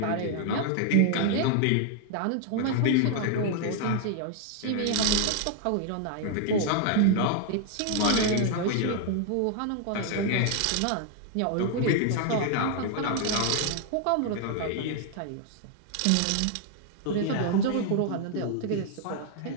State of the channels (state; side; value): different; both; correlation 0.00